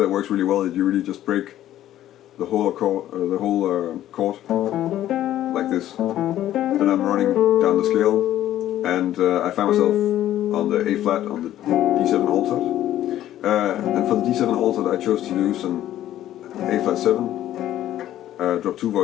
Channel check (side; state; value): right; quieter; 12.7 dB